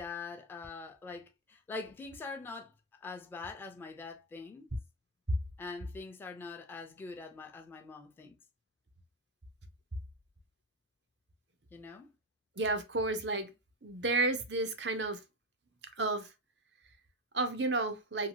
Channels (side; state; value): both; normal; correlation 0.07